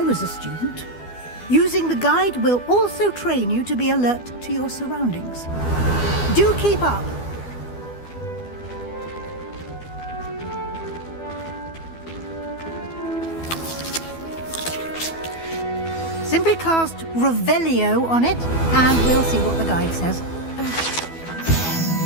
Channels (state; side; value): late; right; 12 ms